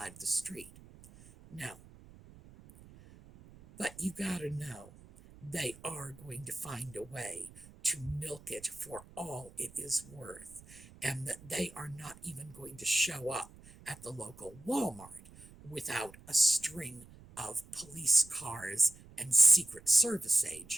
of the street. No. But you gotta know, they are going to find a way to milk it for all it is worth, and that they are not even going to show up at the local Walmart without a string of police cars and Secret Service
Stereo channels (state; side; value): noise; right; rumble, 21 dB below the sound